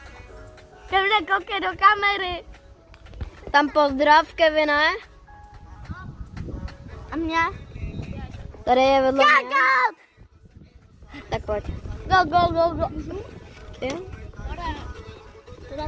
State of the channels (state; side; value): identical; both; correlation 1.00